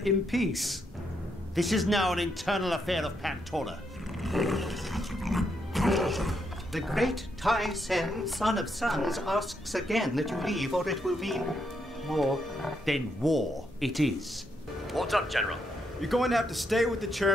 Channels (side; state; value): both; normal; correlation 0.79